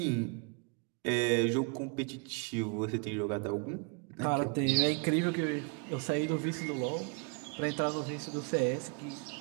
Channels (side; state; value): left; quieter; 35.0 dB